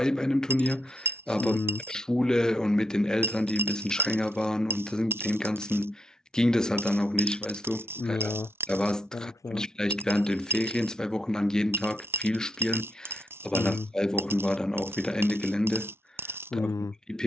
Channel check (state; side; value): normal; both; correlation 0.80